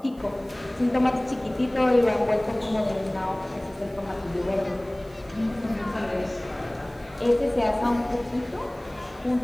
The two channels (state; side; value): noise; right; hiss, 29 dB below the sound